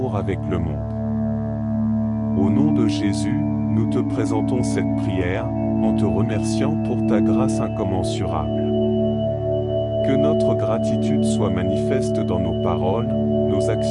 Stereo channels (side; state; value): both; identical; correlation 1.00